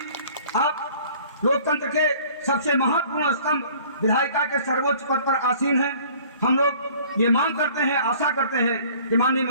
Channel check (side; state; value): both; inverted; correlation -0.51